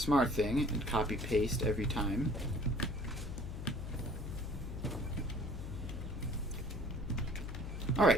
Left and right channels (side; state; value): left; noise; hum, 7 dB below the sound